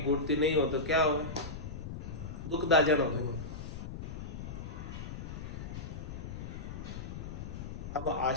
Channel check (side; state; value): left; noise; rumble, 7 dB below the sound